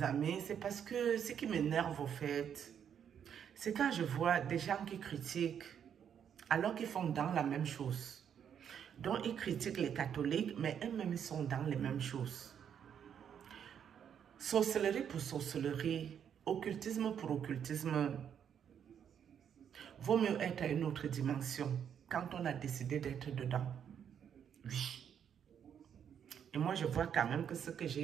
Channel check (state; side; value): quieter; left; 8.4 dB